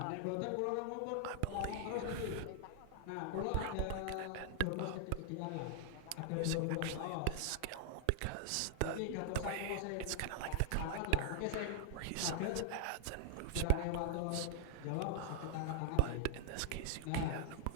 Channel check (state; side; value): different; both; correlation 0.00